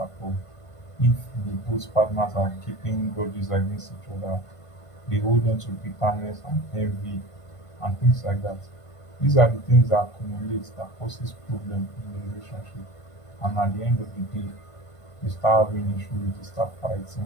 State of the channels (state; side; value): late; right; 1.5 ms